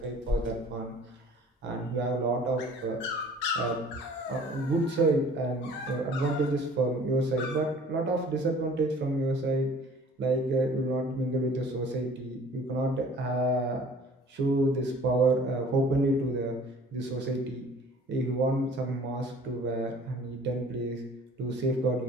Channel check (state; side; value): normal; both; correlation 0.50